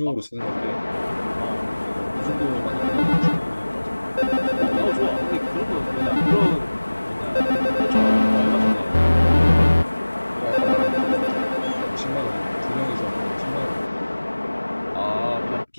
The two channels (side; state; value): both; inverted; correlation -1.00